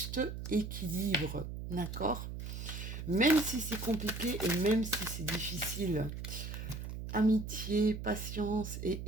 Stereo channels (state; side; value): noise; right; hum, 7 dB below the sound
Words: équilibre, d'accord? Même si c'est compliqué et même si c'est difficile. Amitié, patience